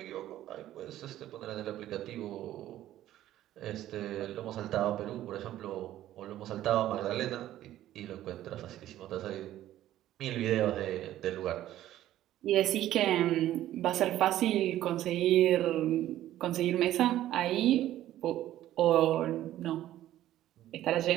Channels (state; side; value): quieter; left; 13.3 dB